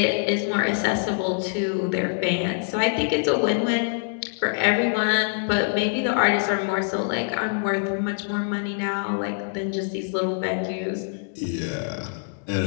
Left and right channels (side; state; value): right; silent; digital silence